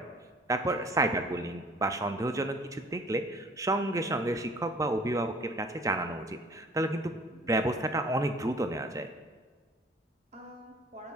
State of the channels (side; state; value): both; normal; correlation 0.51